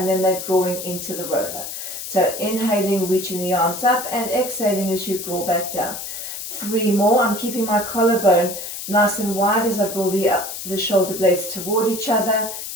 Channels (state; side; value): noise; left; hiss, 8 dB below the sound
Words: then they're drawing into the roller. So inhaling, reaching the arms up, and exhaling as you draw back down. 3 more. I'm keeping my collarbone nice and wide as I draw the shoulder blades toward each other.